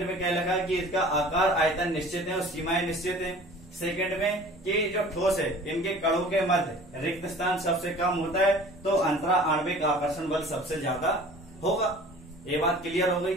में क्या लगा कि इसका आकार आयतन निश्चित है और सीमाएं निश्चित है। सेकंड में कि जो ठोस है इनके कणों के मध्य रिक्त स्थान सबसे कम होता है तो अंतरा आणविक आकर्षण बल सबसे ज्यादा होगा। ये बात क्लियर हो गई,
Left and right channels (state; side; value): normal; both; correlation 0.45